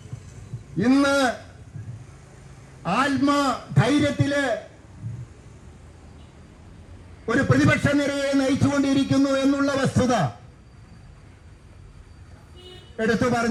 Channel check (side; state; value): both; identical; correlation 1.00